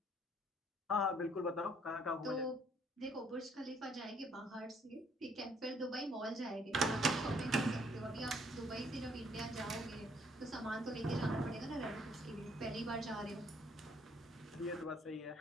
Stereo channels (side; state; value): both; normal; correlation 0.65